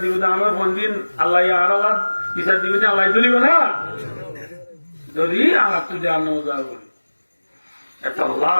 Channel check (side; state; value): both; inverted; correlation -1.00